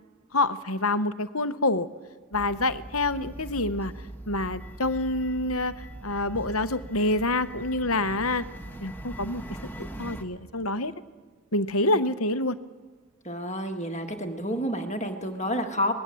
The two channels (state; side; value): normal; both; correlation -0.09